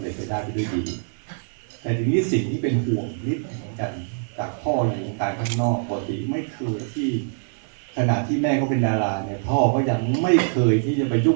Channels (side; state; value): left; silent; digital silence